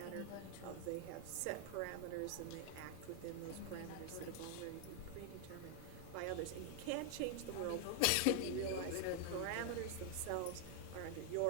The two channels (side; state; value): both; different; correlation 0.00